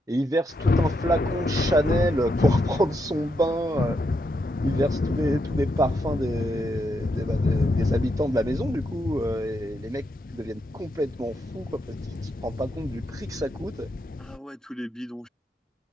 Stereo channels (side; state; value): both; normal; correlation 0.80